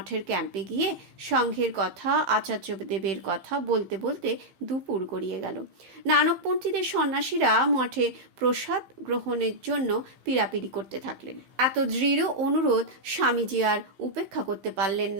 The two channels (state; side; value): late; left; 15 ms